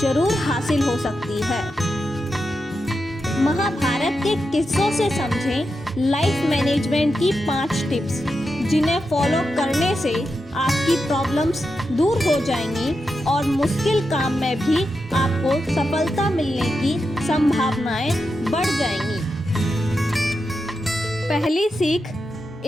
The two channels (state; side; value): normal; both; correlation 0.88